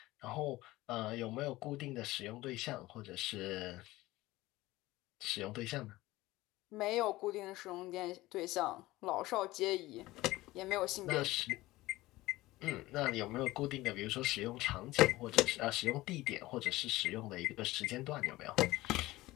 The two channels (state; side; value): quieter; right; 18.4 dB